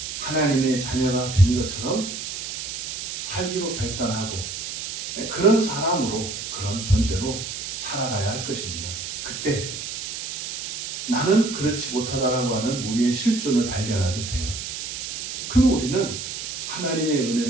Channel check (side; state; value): right; noise; hiss, 6 dB below the sound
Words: 하나님의 자녀가 된 것처럼 살기로 결단하고 그런 사람으로, 그런 존재로 살아가야 할 것입니다. 그때 나는 그렇지 못하다라고 하는 우리의 실존을 발견하게 돼요. 그러면 우리는 하나님의